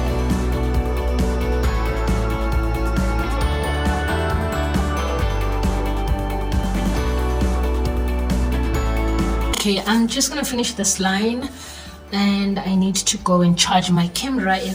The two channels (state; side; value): identical; both; correlation 1.00